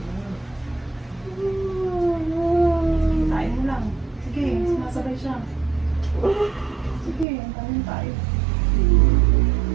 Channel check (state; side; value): drops out; left; at 7.2 s